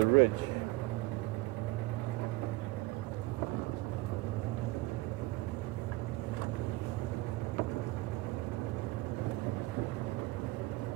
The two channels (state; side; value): quieter; left; 20.6 dB